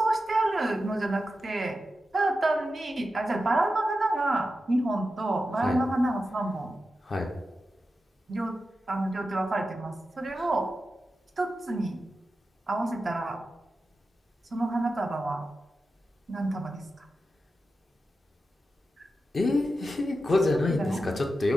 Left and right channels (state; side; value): normal; both; correlation 0.91